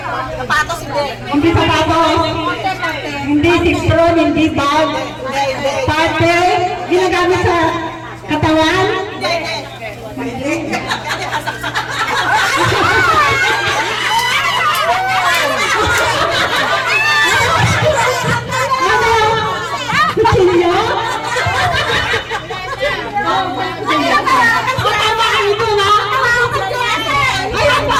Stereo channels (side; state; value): both; identical; correlation 1.00